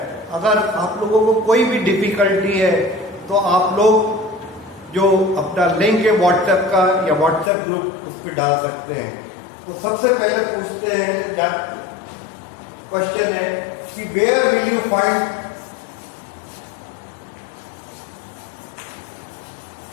अगर आप लोगों को कोई भी डिफिकल्टी है तो आप लोग जो अपना लिंक है व्हाट्सएप का या व्हाट्सएप ग्रुप उस पर डाल सकते हैं। तो सबसे पहले पूछते हैं, क्वेश्चन है कि where will you find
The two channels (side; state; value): right; drops out; at 7.5 s